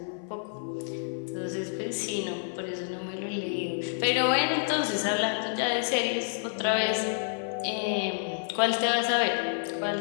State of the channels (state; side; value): silent; right; 55 dB below the other